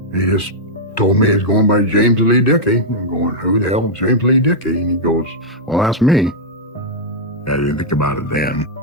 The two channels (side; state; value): both; normal; correlation -0.06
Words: He just told me he's going by James Lee Dickey. I'm going, who the hell is James Lee Dickey? And he goes, well, that's me. I didn't think about it then.